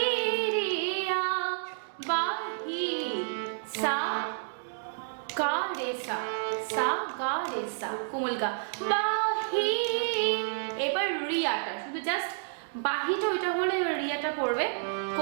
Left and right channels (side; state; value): left; silent; digital silence